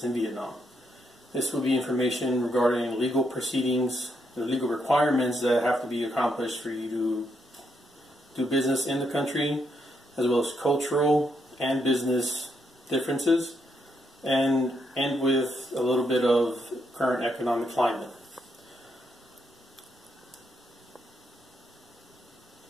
in Vietnam. This will be information regarding legal proceedings, the legal requirements that have to be accomplished for you to do business in the country, as well as cultural and business differences, and end with a little bit of current economic climate.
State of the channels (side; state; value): both; normal; correlation 0.78